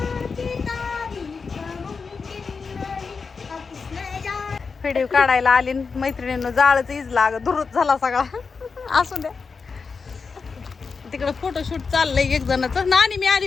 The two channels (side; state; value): right; quieter; 5.0 dB